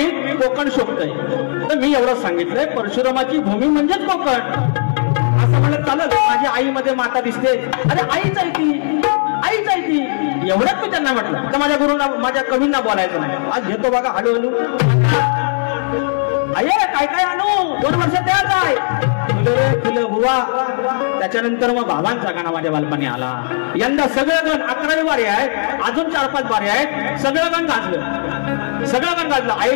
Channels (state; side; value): silent; right; 68 dB below the other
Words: कोकण शोभतंय. तर मी एवढं सांगितलंय परशुरामाची भूमी म्हणजेच कोकण. असं म्हणलं चालत. माझी आईमध्ये माता दिसते. अरे आईच आहे ती, आईच आहे ती. एवढंच मी त्यांना म्हटलं. तर माझ्या गुरुंना माझ्या कवींना बोलायचं नाही. आज घेतो बघा हळूहळू. अरे काय काय आणू 2 वर्ष त्याच आहे. फुलं रे फुलं बुवा. त्याच्यानंतर मग बाबांचा गाणं माझ्या बालपणी आला. यंदा सगळं गण 11वी वारे आहेत, अजून 4-5 वारे आहेत. सगळं गण गाजलं, सगळं गण गाजलं.